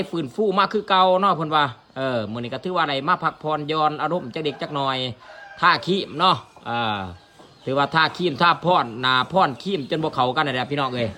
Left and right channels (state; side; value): identical; both; correlation 1.00